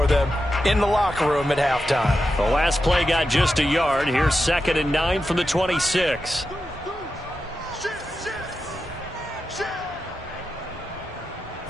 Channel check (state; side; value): normal; both; correlation 0.89